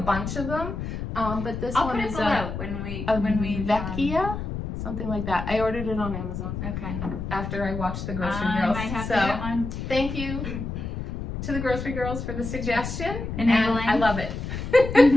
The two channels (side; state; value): left; noise; rumble, 6 dB below the sound